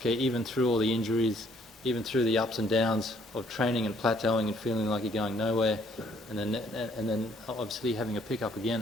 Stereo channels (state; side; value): normal; both; correlation 0.64